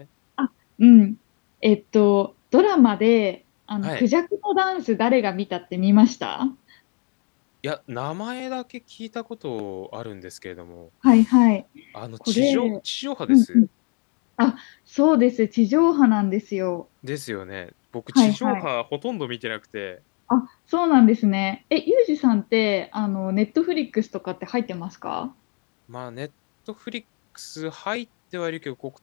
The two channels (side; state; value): right; quieter; 37.0 dB